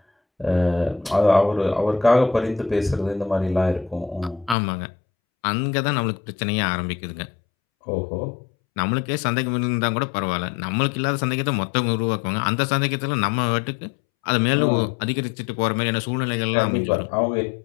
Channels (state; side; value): drops out; right; at 4.5 s